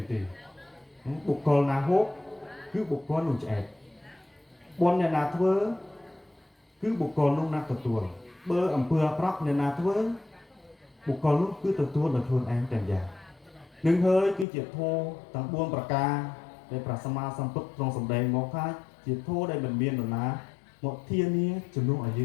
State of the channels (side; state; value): right; drops out; at 14.5 s